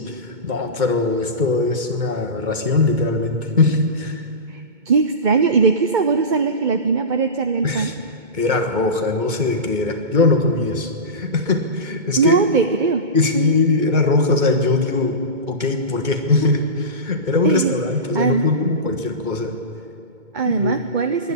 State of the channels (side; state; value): left; late; 2.2 ms